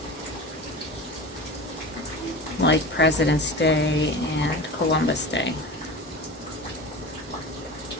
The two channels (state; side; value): normal; both; correlation 0.32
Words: like President's Day and Columbus Day.